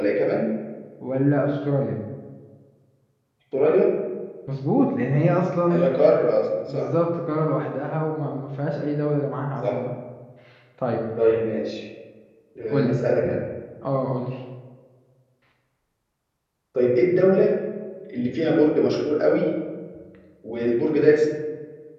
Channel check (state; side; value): identical; both; correlation 1.00